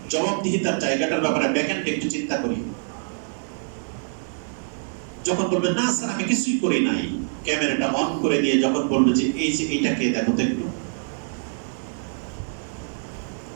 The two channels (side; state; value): left; silent; 62 dB below the other